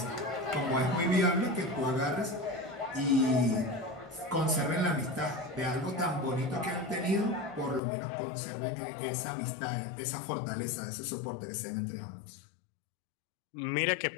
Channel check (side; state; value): right; drops out; at 7.8 s